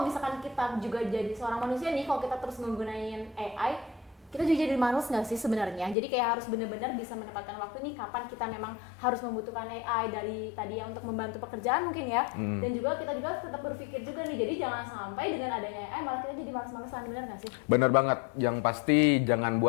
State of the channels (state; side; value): drops out; right; at 6.0 s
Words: misalkan kita juga jadi seorang manusia nih, kalau kita terus menggunakan AI, kita juga jadi manusia nggak sih sebenarnya? Jadi kayak harus benar-benar bisa menempatkan waktu nih kapan kita memang harus membutuhkan AI dari tadi ya untuk membantu pekerjaan mungkin ya. Dan juga kita juga tetap berpikir juga nih, jadi jangan sampai dengan adanya AI malah kita jadi malas-malasan, benar nggak sih? Bener banget, yang pasti jangan